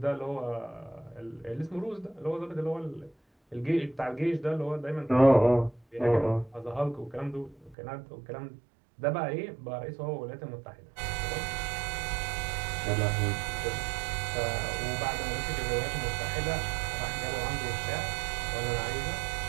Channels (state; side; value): drops out; left; at 7.8 s